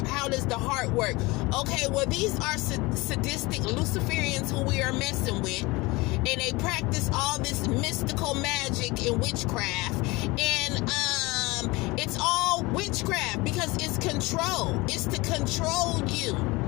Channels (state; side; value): quieter; right; 22.9 dB